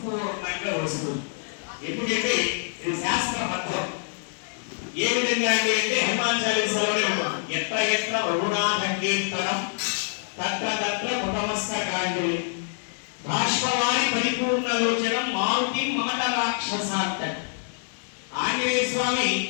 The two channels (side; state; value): right; silent; digital silence